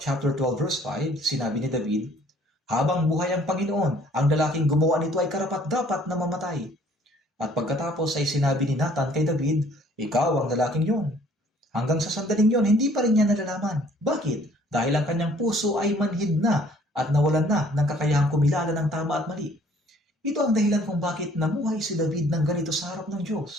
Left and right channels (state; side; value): normal; both; correlation 0.58